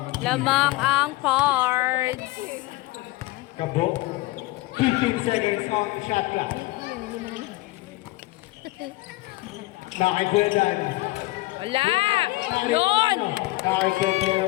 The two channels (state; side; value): quieter; right; 20.3 dB